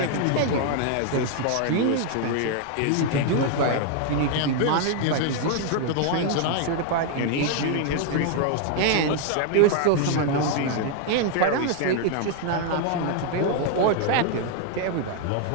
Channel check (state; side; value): different; both; correlation 0.00